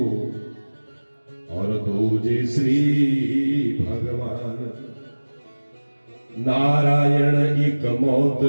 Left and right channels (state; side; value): inverted; both; correlation -1.00